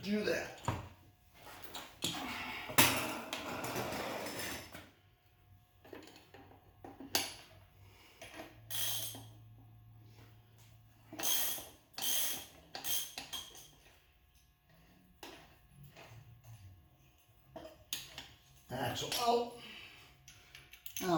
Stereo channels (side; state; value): both; identical; correlation 1.00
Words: that. Axle out. Now